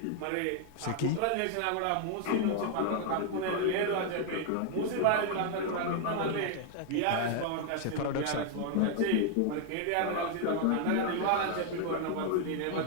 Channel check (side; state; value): both; different; correlation 0.00